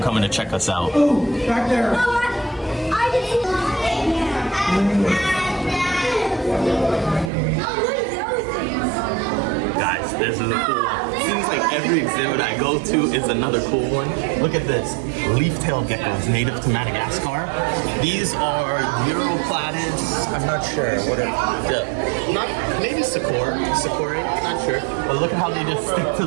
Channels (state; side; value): drops out; left; at 7.3 s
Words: coming to check us out. Oh, back there. Guys, this is a cool one. Seems like every exhibit I go to is another cool one. Look at this. Leaf-tailed geckos, native to Madagascar. These are Europlatids. I'm not sure. What are maybe Sakura, not sure. But look at how they just stick to